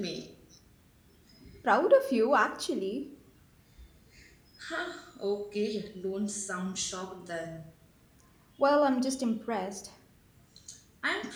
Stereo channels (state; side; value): identical; both; correlation 1.00